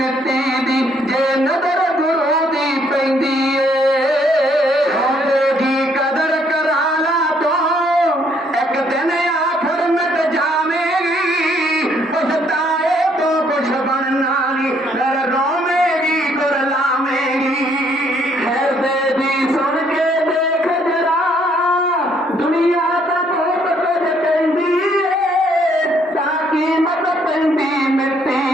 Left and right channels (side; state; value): both; normal; correlation 0.67